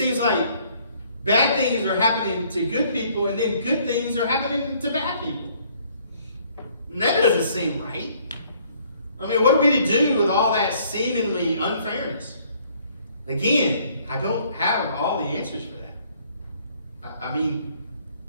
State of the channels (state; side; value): inverted; both; correlation -0.62